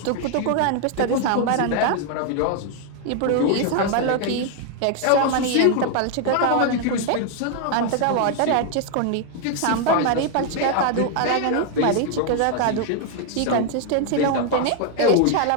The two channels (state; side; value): different; both; correlation 0.00